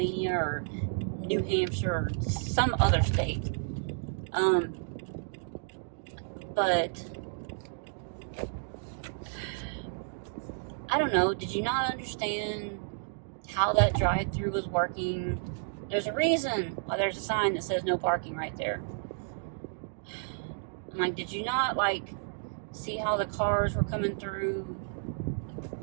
or New Hampshire or some other state. But I don't know. Did you not understand how that drive-through was working? There's a reason why there's a sign that says no parking right there. I'm like, did you not, like, see how the cars were coming through?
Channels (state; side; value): silent; left; digital silence